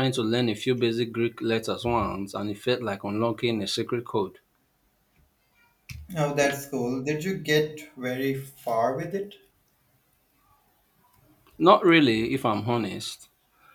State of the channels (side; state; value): both; identical; correlation 1.00